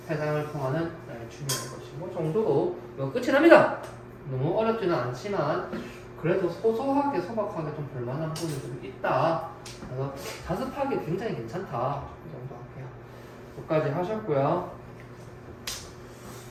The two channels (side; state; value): both; identical; correlation 1.00